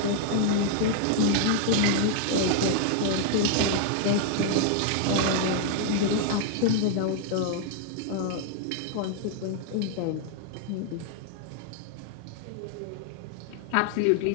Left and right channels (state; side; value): different; both; correlation 0.00